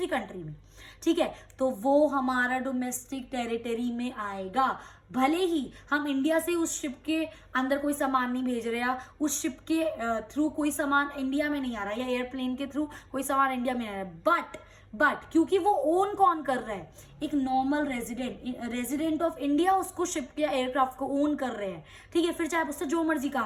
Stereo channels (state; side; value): identical; both; correlation 1.00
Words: कंट्री में. ठीक है. तो वो हमारा डोमेस्टिक टेरिटरी में आएगा. भले ही हम इंडिया से उस शिप के अंदर कोई सामान नहीं भेज रहे, या उस शिप के थ्रू कोई सामान इंडिया में नहीं आ रहा, या एयरप्लेन के थ्रू कोई सामान इंडिया में नहीं आ रहा, बट क्योंकि वो ओन कौन कर रहा है, एक नॉर्मल रेजिडेंट ऑफ इंडिया उसको शिप के एयरक्राफ्ट को ओन कर रहे हैं. ठीक है. फिर चाहे उससे जो मर्जी